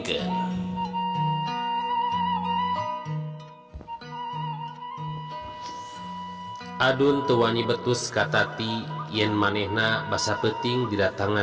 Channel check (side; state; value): both; identical; correlation 1.00